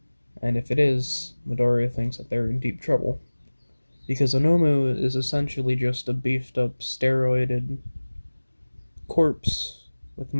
And if it is, Midoriya thinks that they're in deep trouble. Because a Nomu is essentially just a beefed up, steroided corpse with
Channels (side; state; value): both; inverted; correlation -1.00